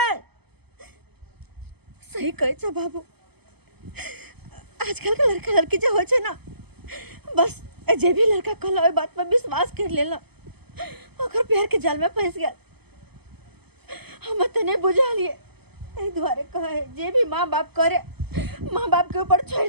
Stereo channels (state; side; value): late; left; 0.97 ms